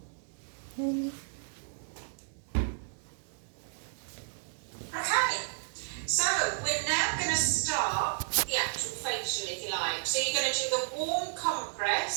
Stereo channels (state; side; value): silent; left; digital silence